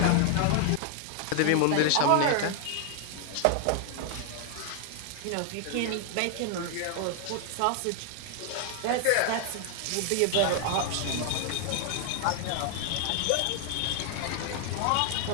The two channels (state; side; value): different; both; correlation 0.00